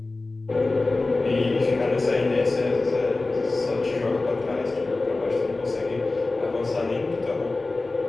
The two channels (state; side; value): quieter; right; 3.3 dB